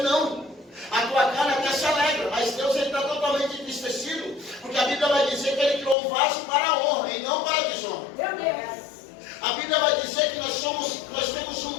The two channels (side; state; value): right; drops out; at 6.0 s